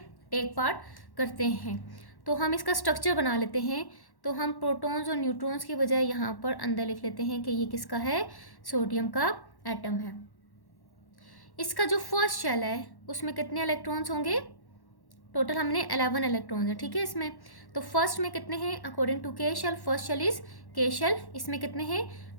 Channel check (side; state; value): right; late; 1.1 ms